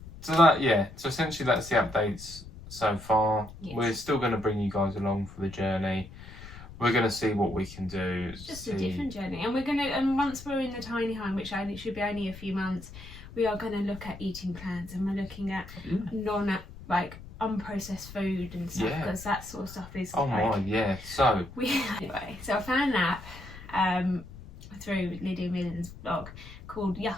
So essentially that's the updates so far. Yes. We're still going to bring you guys along for the journey. We're going to see what we can do. It's just a different journey, and and once we're in the tiny home, which should be only a few months, we are going to look at eating plans, and we're looking at unprocessed food and stuff, because that sort of stuff is. Oh my, yeah. So so I found an app through Lydia Millen's blog called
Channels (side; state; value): left; noise; rumble, 16 dB below the sound